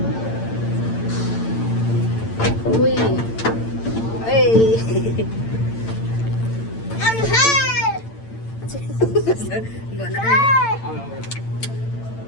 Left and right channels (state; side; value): late; right; 8.9 ms